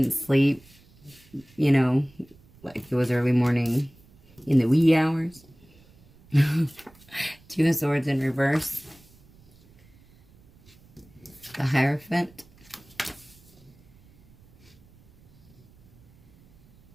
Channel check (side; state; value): right; noise; rumble, 27 dB below the sound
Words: sleep. You know, like it was early morning in the wee hours. Two of Swords in reverse. The Hierophant.